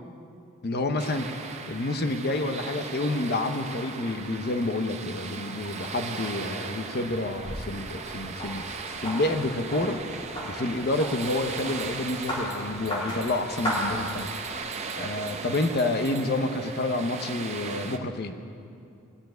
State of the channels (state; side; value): normal; both; correlation 0.30